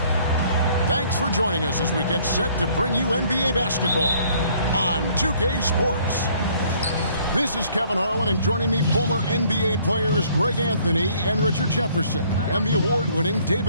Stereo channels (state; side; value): inverted; both; correlation -0.60